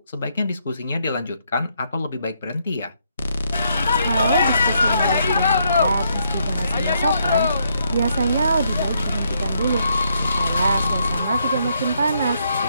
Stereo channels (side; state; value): both; inverted; correlation -0.75